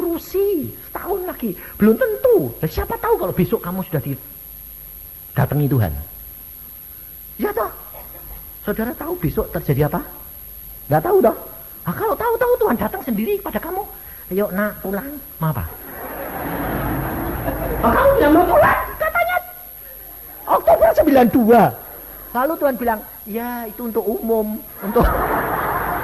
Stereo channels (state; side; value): identical; both; correlation 1.00